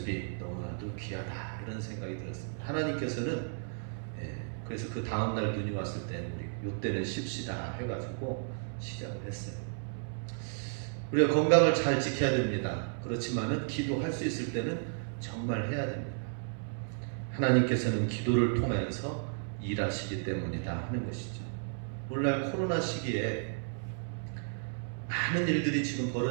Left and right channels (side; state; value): left; silent; 56 dB below the other